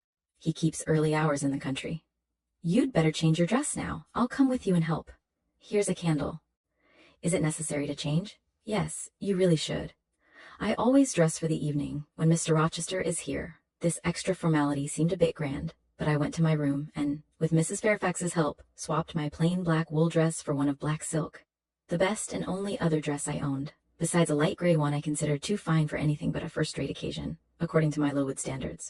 He keeps early hours in the country." "You'd better change your dress now. I'll come with you and help. Here's a candle." "Is it necessary to change?" "Yes, you really should. I always dress for the evening when Mr. Rochester is here." This extra formality seemed a bit grand, but I went to my room and, with Mrs. Fairfax's help, swapped my plain black wool dress for one of black silk, the best and only other dress I owned, besides a light gray one I considered too fine for anything but a first-rate occasion, according to my Lowood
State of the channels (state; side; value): identical; both; correlation 1.00